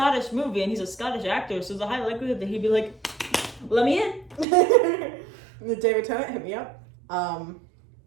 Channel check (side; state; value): left; drops out; at 4.5 s